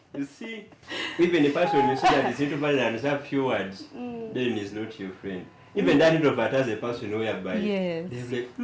You see, even a person you see that is introvert and has a few words, then he's not your friend. Even that introvert has a person whereby they're like,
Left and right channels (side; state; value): both; identical; correlation 1.00